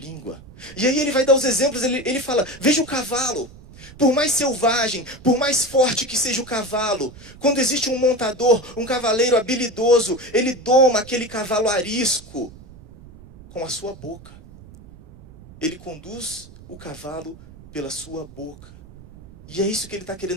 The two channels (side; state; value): right; noise; rumble, 20 dB below the sound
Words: E aí ele vai dar os exemplos, ele fala, veja o cavalo. Por mais selvagem, por mais forte que seja o cavalo, quando existe um montador, um cavaleiro habilidoso, ele doma aquele cavalo arisco com a sua boca. Ele conduz o cavalo pela sua boca. E é isso que ele está